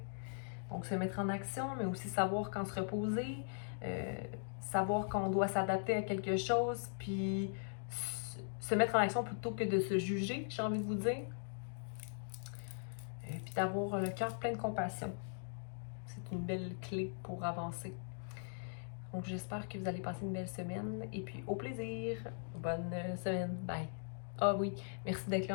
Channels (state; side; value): silent; right; digital silence